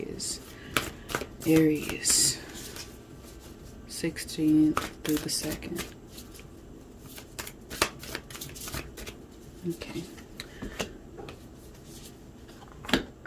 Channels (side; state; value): both; identical; correlation 1.00